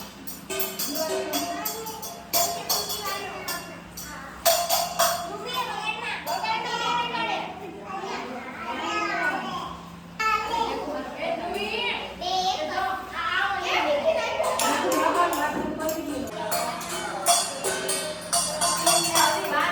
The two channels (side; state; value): both; identical; correlation 1.00